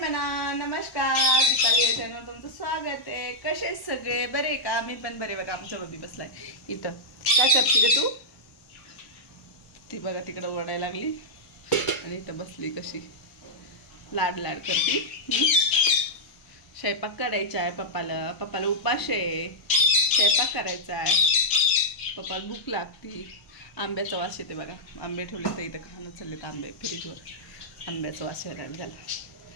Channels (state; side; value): late; right; 1.0 ms